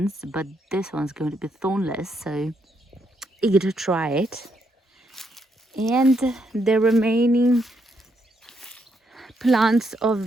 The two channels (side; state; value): both; normal; correlation 0.77